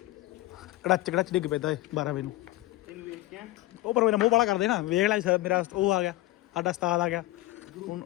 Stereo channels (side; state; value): right; quieter; 17.7 dB